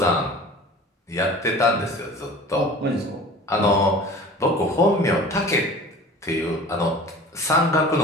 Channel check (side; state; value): both; normal; correlation 0.41